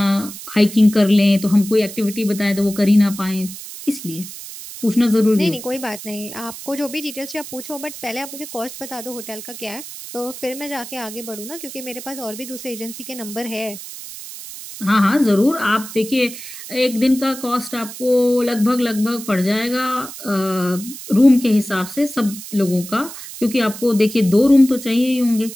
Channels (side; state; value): right; noise; hiss, 12 dB below the sound